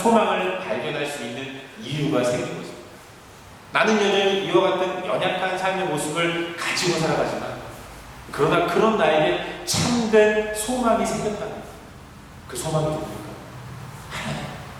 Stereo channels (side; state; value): both; identical; correlation 1.00